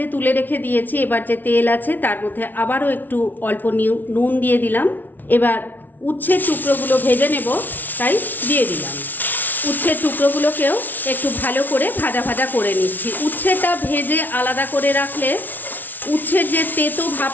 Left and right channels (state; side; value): late; right; 0.085 ms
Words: তুলে রেখে দিয়েছি। এবার যে তেল আছে তার মধ্যে আবারও একটু অল্প নুন দিয়ে দিলাম। এবার উচ্ছের টুকরোগুলো ভেজে নেব, তাই দিয়ে দিলাম। উচ্ছের টুকরোগুলোকেও একটু ভালো করে ভাজা ভাজা করে নিচ্ছি। উচ্ছেটা ভেজে আলাদা করে রাখলে উচ্ছের যে তেতো